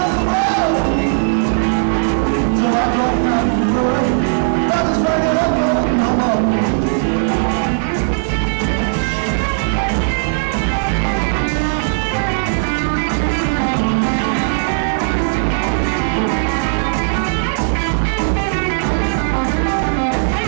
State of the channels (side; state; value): left; silent; 68 dB below the other